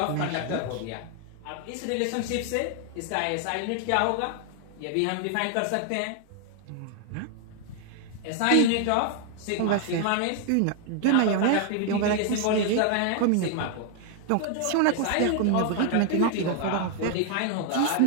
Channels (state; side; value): different; both; correlation 0.00